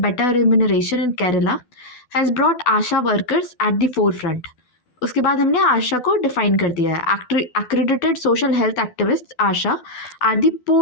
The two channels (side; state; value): right; late; 12 ms